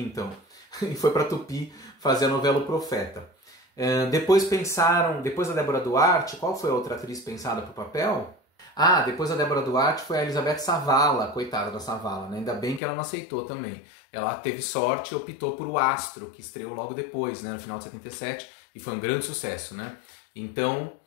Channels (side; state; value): right; drops out; at 12.8 s